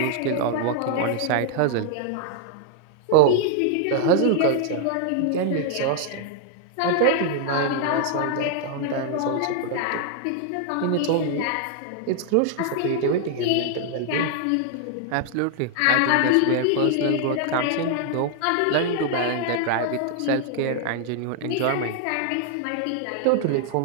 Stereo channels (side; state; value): both; different; correlation 0.00